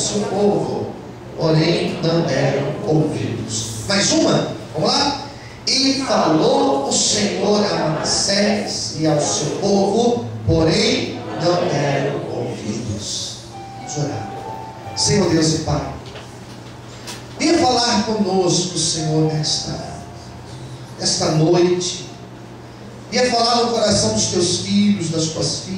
povo, porém não deram ouvidos. Mais uma? Vamos lá? E falou o Senhor a Manassés e ao seu povo, porém não deram ouvidos. Vamos orar. Senhor Deus e Pai, venha falar conosco, Senhor, nesta noite. Venha falar no coração dos teus filhos, das tuas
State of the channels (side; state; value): both; identical; correlation 1.00